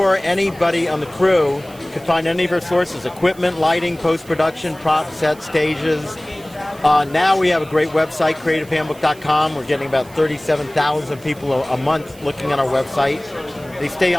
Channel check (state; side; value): noise; right; hiss, 23 dB below the sound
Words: anybody on the crew, you can find any of our sources: equipment, lighting, post-production, prop sets, stages. Now we have a great website, CreativeHandbook.com. We're getting about 37,000 people a month looking at our website. They stay